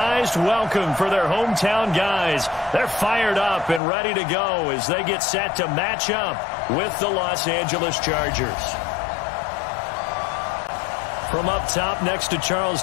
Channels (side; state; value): right; drops out; at 3.8 s